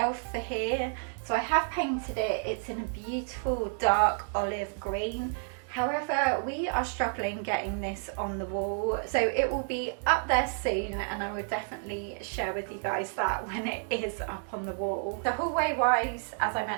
for here. So I have painted it, it's in a beautiful dark olive green. However, we are struggling getting this on the wall, so it will be up there soon, and I will definitely share with you guys that when it is up on the wall. The hallway wise, as I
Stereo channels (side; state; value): left; silent; 58 dB below the other